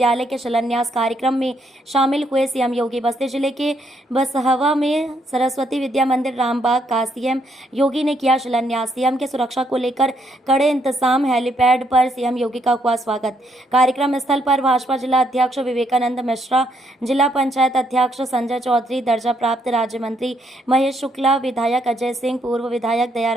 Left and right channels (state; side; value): normal; both; correlation 0.73